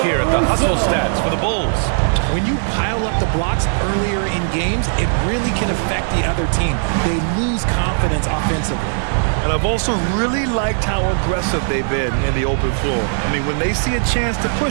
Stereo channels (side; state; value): left; silent; digital silence